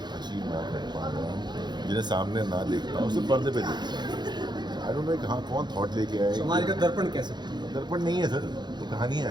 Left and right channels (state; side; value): late; left; 0.21 ms